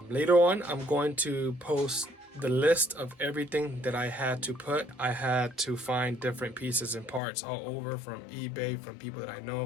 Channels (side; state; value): right; drops out; at 7.2 s